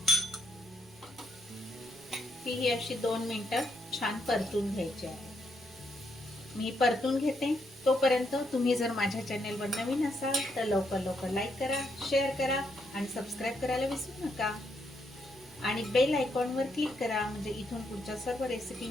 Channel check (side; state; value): both; normal; correlation 0.77